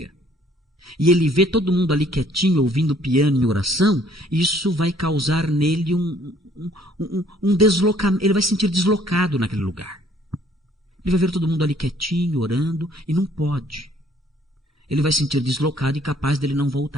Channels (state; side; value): normal; both; correlation 0.61